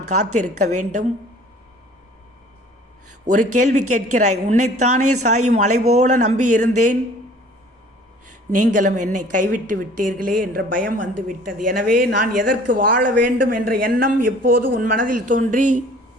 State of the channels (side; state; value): both; normal; correlation 0.50